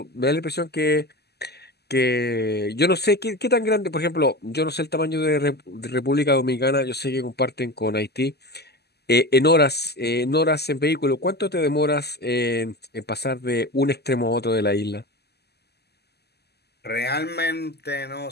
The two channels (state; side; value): late; right; 0.47 ms